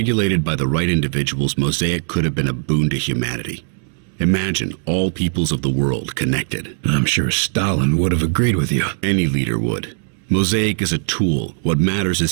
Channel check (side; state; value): left; silent; digital silence